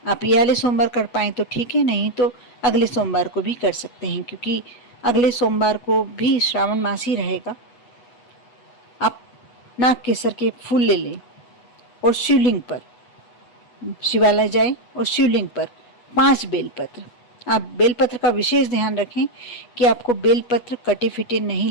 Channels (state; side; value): late; right; 8.2 ms